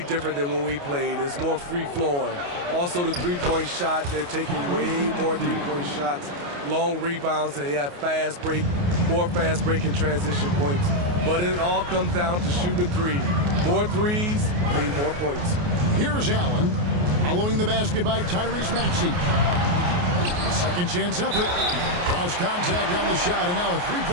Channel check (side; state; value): left; late; 28 ms